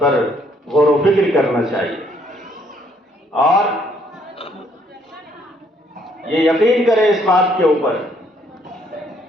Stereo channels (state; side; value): normal; both; correlation 0.67